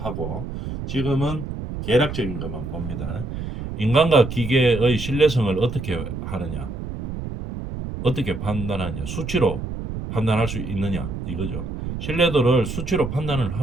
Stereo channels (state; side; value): noise; right; rumble, 7 dB below the sound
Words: 하고 지금은 계략적인 것만 봅니다. 인간과 기계의 신뢰성을 어떻게 하느냐, 어떻게 판단하느냐, 수치로 판단할 수 있느냐 이거죠. 신뢰도를 수치로 판단을